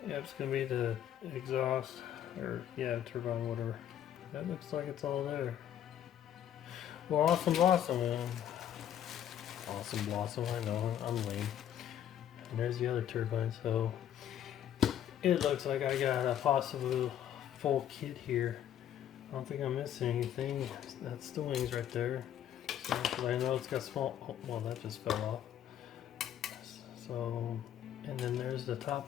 Yeah, it's gonna be the exhaust, or turbine, whatever. That looks like it's all there. Well, awesome blossom, man. Awesome blossom, I know, I'm lame. And there's the other turbine, so it looks like I got a possible full kit here. I don't think I'm missing anything. That's the wings right there. So, I know it's got small, well, that just fell off. So, and then there's the top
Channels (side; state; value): right; quieter; 10.4 dB